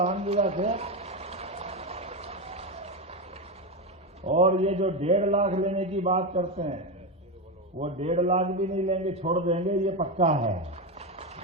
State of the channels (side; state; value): both; normal; correlation 0.13